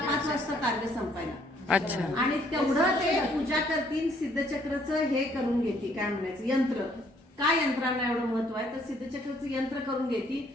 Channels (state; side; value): normal; both; correlation 0.65